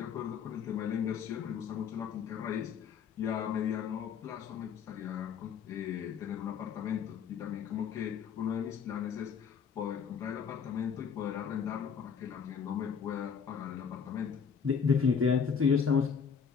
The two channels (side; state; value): right; quieter; 6.7 dB